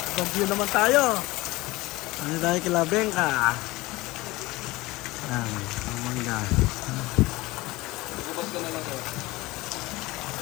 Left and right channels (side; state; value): right; quieter; 20.5 dB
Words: ibang view naman tayo. Ano tayo kila Bengka? Yan, ang mangga. Bubas ka na lang, sir.